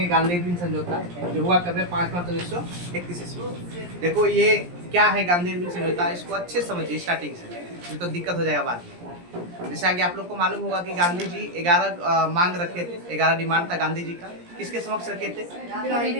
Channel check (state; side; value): late; left; 17 ms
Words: गांधी इरविन समझौता जो हुआ कब 5 मार्च 1931 ईस्वी। देखो ये क्या है गांधी इरविन समझौता, इसको अच्छे से समझिए स्टार्टिंग से, नहीं तो दिक्कत हो जाएगा बाद में। जैसा कि आप लोग को मालूम होगा कि गांधी जी 11 मांग रखे थे, 11 डिमांड था गांधी जी का। किसके समक्ष रखे थे?